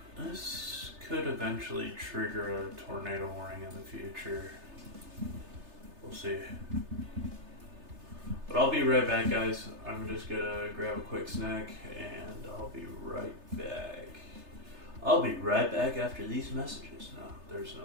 This could eventually trigger a tornado warning in the future. We'll see. But I'll be right back, guys. I'm just gonna grab a quick snack and I'll be right back. I'll be right back after these messages. No, there's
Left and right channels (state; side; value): late; left; 3.3 ms